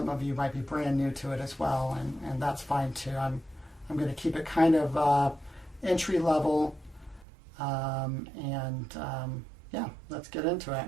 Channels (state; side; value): drops out; left; at 7.2 s